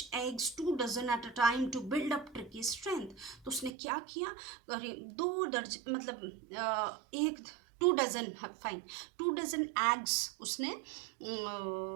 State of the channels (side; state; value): left; drops out; at 3.7 s